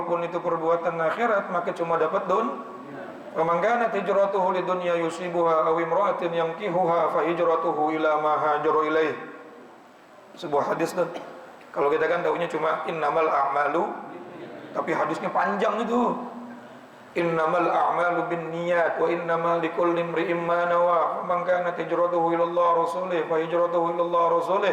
itu perbuatan akhirat, maka cuma dapat wa man kanat hijratuhu lidunya yusibuha aw imra'atin yankihuha fa hijratuhu ila ma hajara ilaih. Sebuah hadis tuh. Kalau kita kan taunya cuma innamal a'malu, tapi hadisnya panjang itu. Innamal a'malu binniyat wa innamal likulli imri'in ma nawa. Man kanat hijratuhu ila Allah rasulih fa hijratuhu ila Allah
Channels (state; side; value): identical; both; correlation 1.00